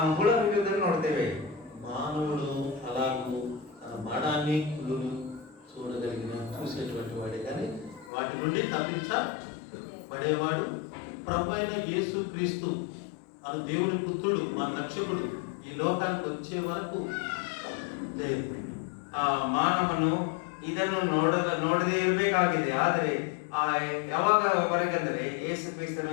ಹುಳ ಹಿಡಿಯುವುದನ್ನು ನೋಡ್ತೇವೆ. మానవుడు అలాగూ తన మరణాన్ని పుల్లును చూడగలిగిన చూసేటువంటి వాడే కానీ వాటి నుండి తప్పించబడేవాడు ప్రభు అయిన యేసు క్రీస్తు అను దేవుని పుత్రుడు మన రక్షకుడు ఈ లోకానికి వచ్చే వరకు లేదు. ಮಾನವನು ಇದನ್ನು ನೋಡದೇ ಇರಬೇಕಾಗಿದೆ. ಆದರೆ ಯಾವಾಗವರೆಗಂದ್ರೆ ಯೇಸು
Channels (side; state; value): right; drops out; at 8.1 s